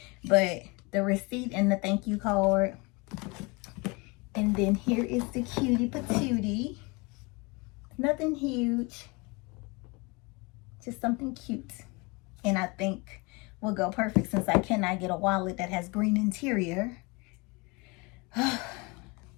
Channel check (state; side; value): quieter; right; 27.5 dB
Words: But the receipt and the thank you card. And then here is the cutie patootie. Nothing huge. Just something cute. And I think will go perfect, since I cannot get a wallet that has green interior.